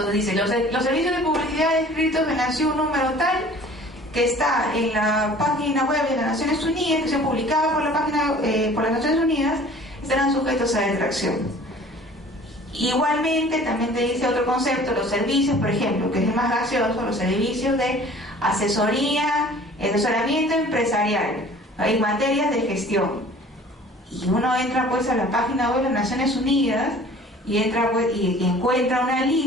dice, los servicios de publicidad descritos en la SIU número tal, que está en la página web de las Naciones Unidas, que se publicada por las Naciones Unidas, estarán sujetos a detracción. Igualmente también te dice otro concepto, los servicios, por ejemplo, que es el más gaseoso, los servicios de asesoramiento empresarial en materias de gestión. Y uno entra pues a la página web de las Naciones Unidas y entra pues, y encuentra una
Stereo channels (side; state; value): both; normal; correlation 0.48